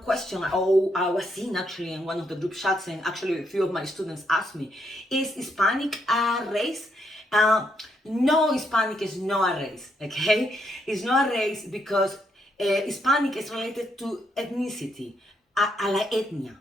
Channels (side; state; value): both; normal; correlation 0.76